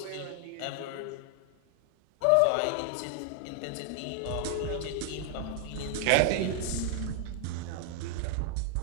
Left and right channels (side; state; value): both; different; correlation 0.00